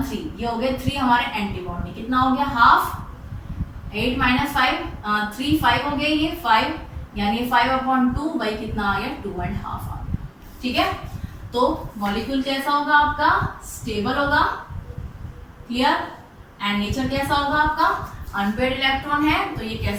3, ये हो गए 3 हमारे एंटी बॉन्डिंग। कितना हो गया, हाफ, 8 माइनस 5 3 5 हो गया, ये 5 यानी 5/2 वही कितना आ गया 2.5 आ गया। ठीक है, तो मॉलिक्यूल कैसा होगा आपका, स्टेबल होगा, क्लियर। एंड नेचर कैसा होगा आपका, अनपेयर्ड इलेक्ट्रॉन है, तो ये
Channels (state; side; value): identical; both; correlation 1.00